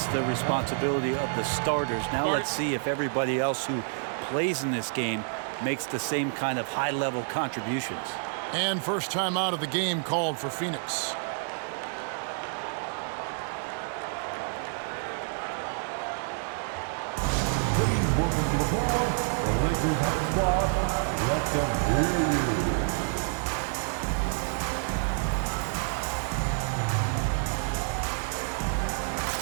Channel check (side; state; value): left; silent; digital silence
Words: the responsibility of the starters. Now let's see if everybody else who plays in this game makes the same kind of high-level contributions. And first time out of the game called for Phoenix. Let them hear you.